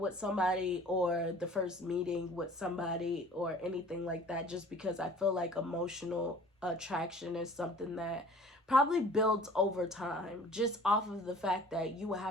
somebody or the first meeting with somebody or anything like that, just because I feel like emotional attraction is something that probably builds over time, just off of the fact that you will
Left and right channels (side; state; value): both; normal; correlation 0.48